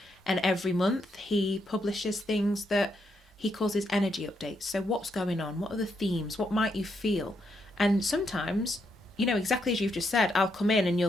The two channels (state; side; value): normal; both; correlation 0.79